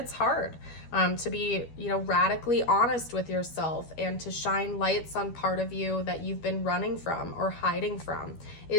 hard to be, radically honest with yourself, and to shine lights on part of you that you've been running from or hiding from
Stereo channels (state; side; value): late; right; 12 ms